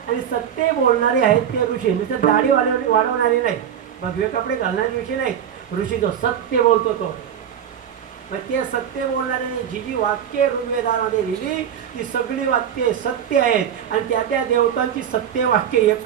आणि सत्य बोलणारे आहेत ते ऋषी. नुसतं दाढी वाढवणारे नाही, भगवे कपडे घालणारे ऋषी नाही. ऋषी जो सत्य बोलतो तो. मग ते सत्य बोलणारे जी जी वाक्य ऋग्वेदामध्ये लिहिली ती सगळी वाक्ये सत्य आहेत आणि त्या त्या देवतांची सत्य वाक्य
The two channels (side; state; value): left; quieter; 9.0 dB